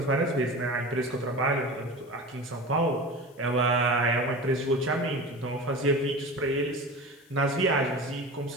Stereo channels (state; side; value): noise; left; hiss, 30 dB below the sound